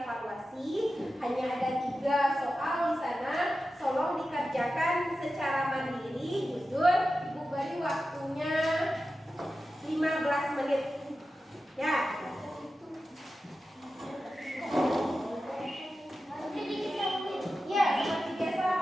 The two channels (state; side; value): normal; both; correlation 0.93